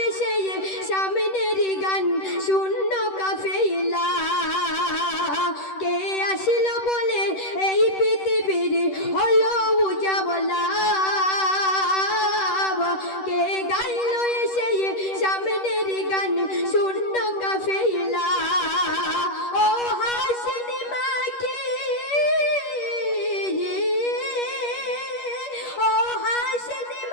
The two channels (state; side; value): late; right; 10 ms